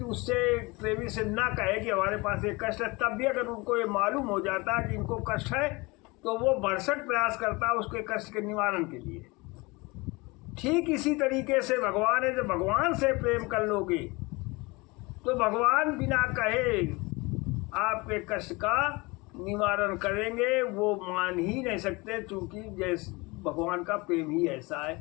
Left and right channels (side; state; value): right; quieter; 25.0 dB